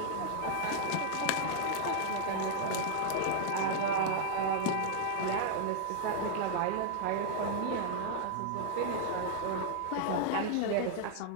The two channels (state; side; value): different; both; correlation 0.00